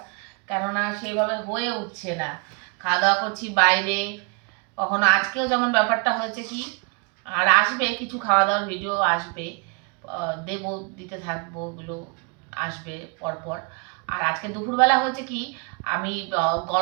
কেননা সেইভাবে হয়ে উঠছে না। খাওয়া দাওয়া করছি বাইরে, কখনো আজকেও যেমন ব্যাপারটা হয়েছে কি, আর আসবে কিছু খাওয়া দাওয়ার ভিডিও আসবে, দেবো, দিতে থাকবো, ওগুলো আসবে পরপর। আর আজকে দুপুরবেলা হয়েছে কি, আমি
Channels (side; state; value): left; quieter; 33.3 dB